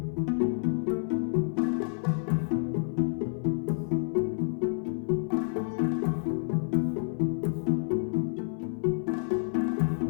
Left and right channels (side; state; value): right; silent; 58 dB below the other